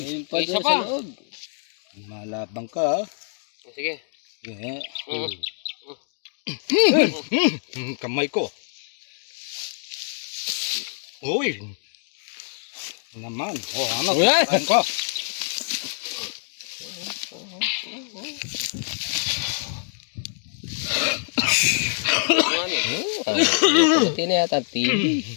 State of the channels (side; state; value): right; silent; digital silence